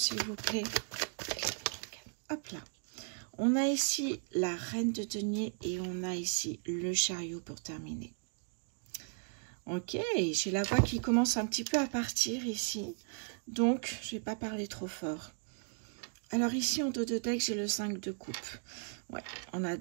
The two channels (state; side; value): silent; left; 54 dB below the other